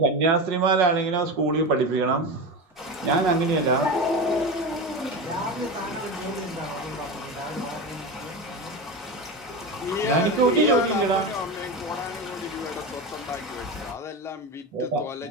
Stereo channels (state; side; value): normal; both; correlation 0.22